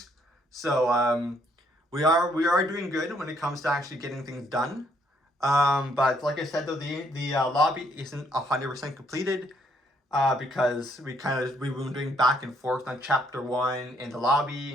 So we are doing good when it comes to actually getting things done. But like I said though, the lobby isn't 100% completed, because we've been doing back and forth on chapter 1 in the lobby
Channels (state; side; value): normal; both; correlation 0.69